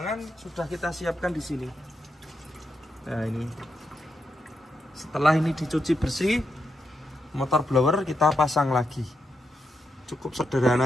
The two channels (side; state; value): both; normal; correlation 0.83